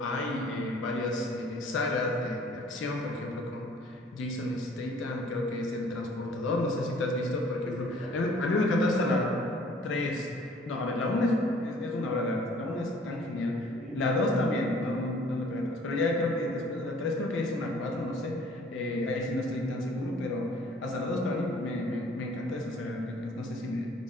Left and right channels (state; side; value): normal; both; correlation 0.55